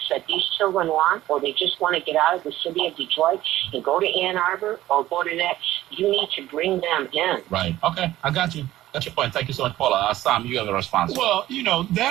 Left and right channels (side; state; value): left; quieter; 14.7 dB